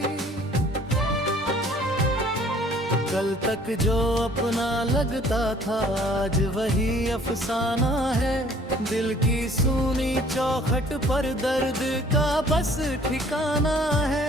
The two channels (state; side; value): normal; both; correlation 0.56